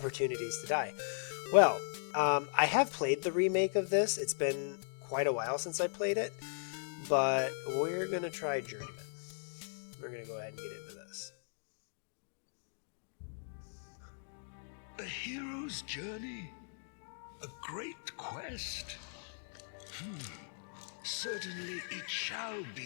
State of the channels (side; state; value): right; silent; digital silence